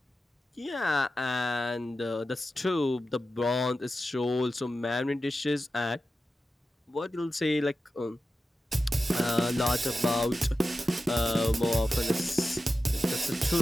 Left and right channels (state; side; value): normal; both; correlation 0.92